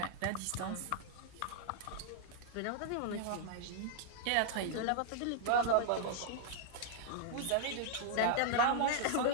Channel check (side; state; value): both; different; correlation -0.01